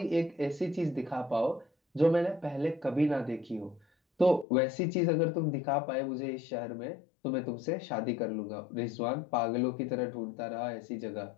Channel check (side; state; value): right; drops out; at 4.5 s